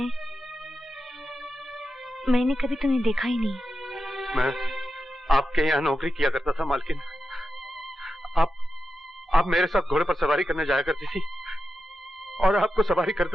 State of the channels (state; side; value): normal; both; correlation 0.89